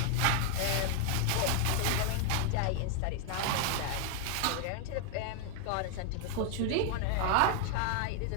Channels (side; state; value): both; different; correlation 0.00